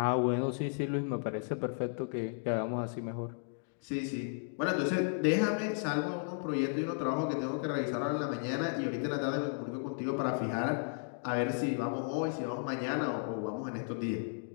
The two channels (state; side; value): silent; right; digital silence